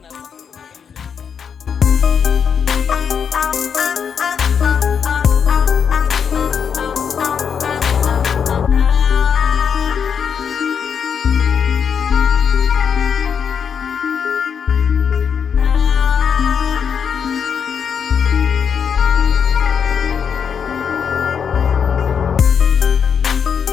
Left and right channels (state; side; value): quieter; right; 7.1 dB